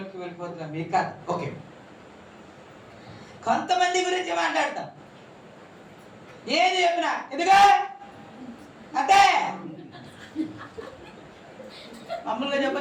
వెళ్ళిపోతున్నా. మీకు కాదు, ఓకే. కొంతమంది గురించి మాట్లాడతాం, ఏది చెప్పినా ఎందుగా అంటే మామూలుగా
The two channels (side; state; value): both; identical; correlation 1.00